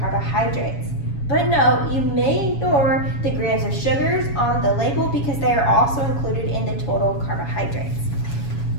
But no, you may ignore the grams of sugars on the label because they are also included in the total carbohydrates.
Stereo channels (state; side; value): late; right; 7.2 ms